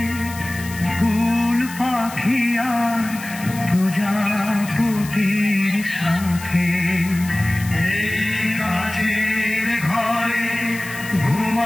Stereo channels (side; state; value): left; noise; hiss, 14 dB below the sound